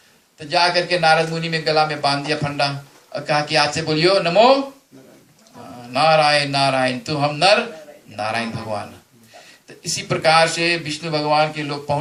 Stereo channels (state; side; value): identical; both; correlation 1.00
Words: तो जा करके नारद मुनि में गला में बांध दिया फंडा और कहा कि आज से बोलियो नमो नारायण नारायण, तो हम नर नारायण भगवान। तो इसी प्रकार से विष्णु भगवान के लोग